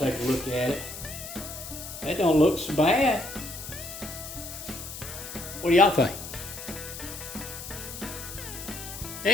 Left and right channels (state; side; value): noise; left; hiss, 10 dB below the sound